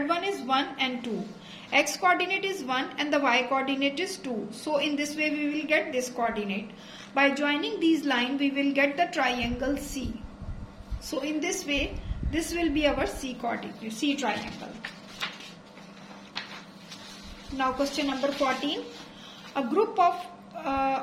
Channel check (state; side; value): identical; both; correlation 1.00